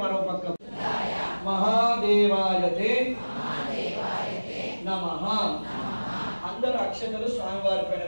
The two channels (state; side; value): inverted; both; correlation -1.00